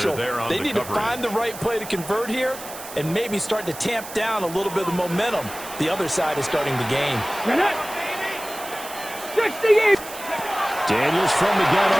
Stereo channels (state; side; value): noise; right; hiss, 13 dB below the sound